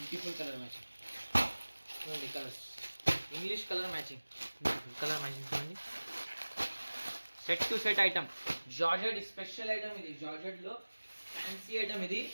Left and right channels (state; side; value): inverted; both; correlation -1.00